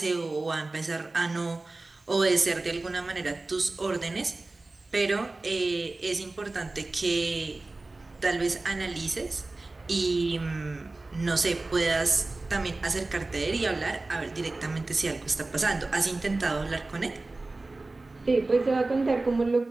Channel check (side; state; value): left; quieter; 3.2 dB